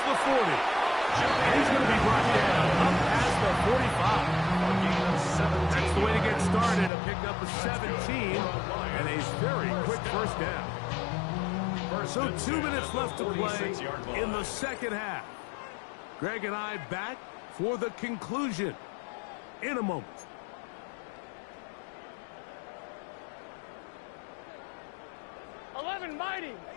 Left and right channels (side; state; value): right; drops out; at 6.9 s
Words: the 40. And he's going to be brought down up past the 45. That's the way to get started. A pickup of 17 and a very quick first down. So 2 minutes left to play in the second half. Greg and I back for the conclusion in a moment. Mighty.